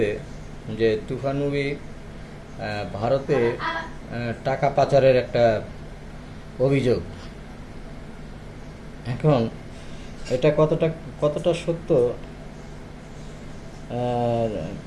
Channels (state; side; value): identical; both; correlation 1.00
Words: যে তুফান মুভি ভারতে টাকা পাচারের একটা অভিযোগ। এখন এটা কতটা কতটা সত্য? আহ,